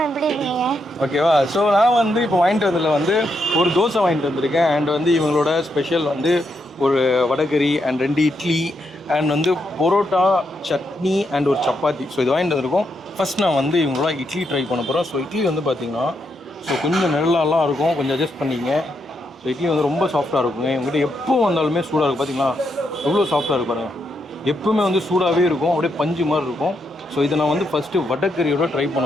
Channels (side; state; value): both; normal; correlation 0.80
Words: எப்படி இருக்கீங்க? ஓகேவா? ஸோ நான் வந்து இப்போ வாங்கிட்டு வந்ததில் வந்து ஒரு தோசை வாங்கிட்டு வந்திருக்கேன். அண்ட் வந்து இவங்களோட ஸ்பெஷல் வந்து ஒரு வடகரி அண்ட் 2 இட்லி அண்ட் வந்து பரோட்டா, சட்னி அண்ட் ஒரு சப்பாத்தி. ஸோ இது வாங்கிட்டு வந்திருக்கோம். ஃபஸ்ட் நான் வந்து இவங்களோட இட்லி ட்ரை பண்ண போகிறோம். ஸோ இட்லி வந்து பார்த்திங்கன்னா கொஞ்சம் நெருளாலாம் இருக்கும், கொஞ்சம் அட்ஜஸ்ட் பண்ணிங்க. ஸோ இட்லி வந்து ரொம்ப சாஃப்டாக இருக்குங்க. இவங்ககிட்ட எப்போ வந்தாலுமே சூடாக இருக்கும். பார்த்தீங்களா எவ்வளோ சாஃப்டாக இருக்கு பாருங்கள். எப்பவுமே வந்து சூடாகவே இருக்கும், அப்படியே பஞ்சு மாதிரி இருக்கும். ஸோ இதை நான் வந்து ஃபஸ்ட்டு வடகரியோட ட்ரை